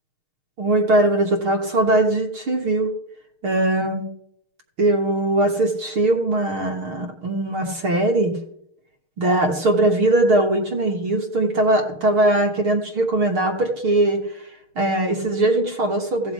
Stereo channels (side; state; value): left; late; 6.5 ms